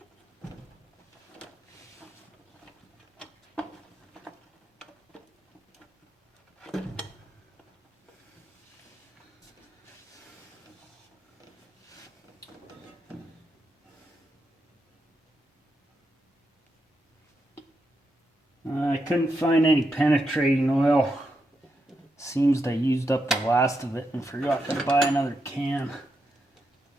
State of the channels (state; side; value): normal; both; correlation 0.84